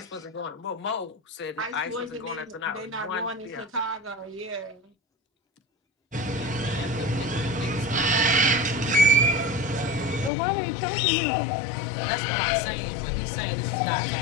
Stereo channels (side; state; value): right; drops out; at 10.3 s